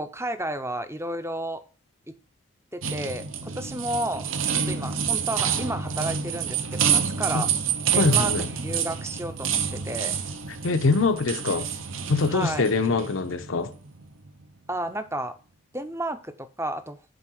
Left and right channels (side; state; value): both; normal; correlation 0.29